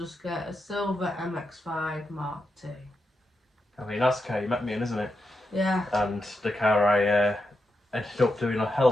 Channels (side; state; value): both; normal; correlation 0.86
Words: get a silver MX-5 Mark II. I mean, that's the car you met me in, isn't it? Yeah. And the car I ended up doing a hell